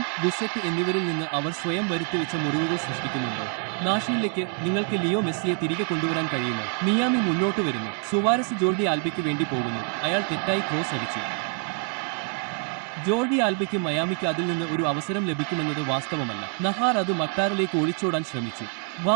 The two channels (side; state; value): left; quieter; 36.0 dB